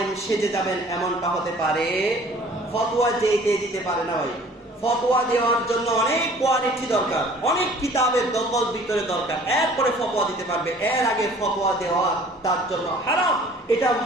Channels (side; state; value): both; normal; correlation 0.51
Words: সেজে যাবেন এমনটা হতে পারে? ফতোয়া যে দিতে পারে না ভাই। ফতোয়া দেওয়ার জন্য অনেক কোয়ালিটি দরকার, অনেক কিতাবের দখল ভিতরে দরকার, এরপরে ফতোয়া দিতে পারবে। এর আগে ফতোয়া দেওয়া তার জন্য হারাম। এটা